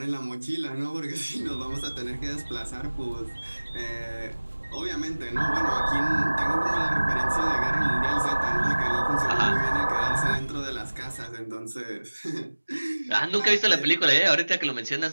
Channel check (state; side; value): inverted; both; correlation -1.00